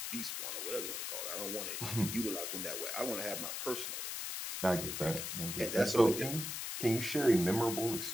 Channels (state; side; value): noise; left; hiss, 4 dB below the sound